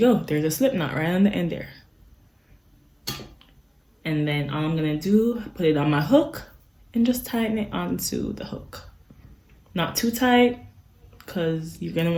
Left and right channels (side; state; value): both; identical; correlation 1.00